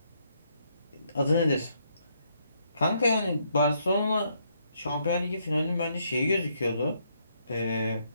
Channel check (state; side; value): inverted; both; correlation -0.74